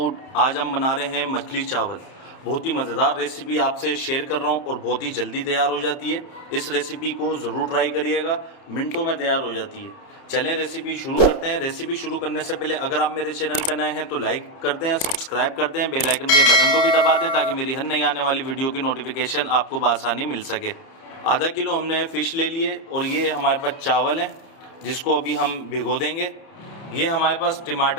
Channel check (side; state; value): right; late; 31 ms